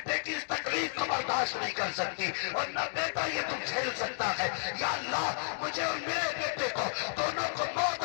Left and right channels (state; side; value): silent; right; digital silence